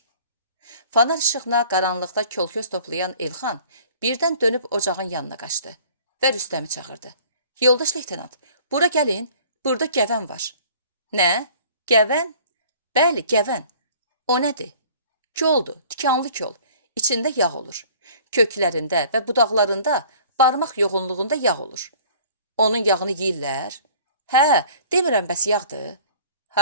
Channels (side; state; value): both; inverted; correlation -0.50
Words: Fanar işığına qaranlıqda kol-köz toplayan Elxan birdən dönüb ocağın yanına qaçdı və Rüstəmi çağırdı. Yoldaş leytenant, bura gəlin, burada gəvən var. Nə? Gəvən? Bəli, gəvən. O nədir? Koldur, tikanlı kol. İçində yağ olur. Köklərində və budaqlarında barmaq yoğunluğunda yağ olur. Onun yağını yeyirlər? Hə, demirəm bəs yağdır.